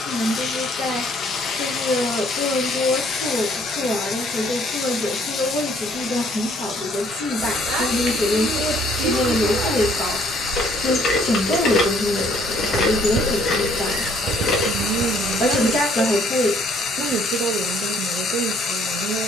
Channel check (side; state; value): both; normal; correlation 0.63